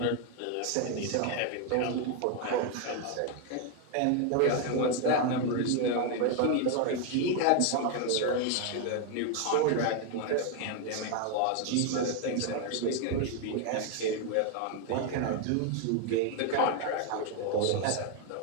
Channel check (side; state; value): both; different; correlation 0.01